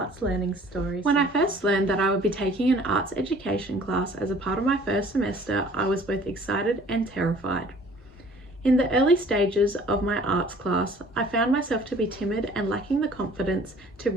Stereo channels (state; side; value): normal; both; correlation 0.52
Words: learning story. When I first learned that I would be taking an arts education class as a part of my first semester, I was both excited and terrified. In the early stages of my arts class, I found myself to be timid and lacking the confidence to